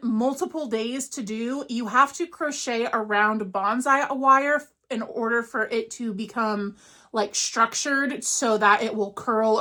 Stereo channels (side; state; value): both; identical; correlation 1.00